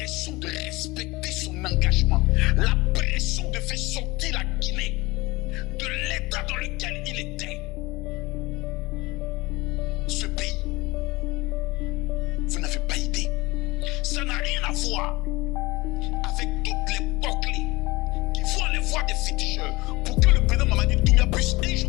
de respecter son engagement, la pression de faire sortir la Guinée de l'état dans lequel il était. Ce pays, vous n'avez pas idée. Ça n'a rien à voir avec toutes les boucliers qui vont aller voir des féticheurs pour que le président Mamadi Doumbia puisse un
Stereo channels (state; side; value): quieter; right; 22.2 dB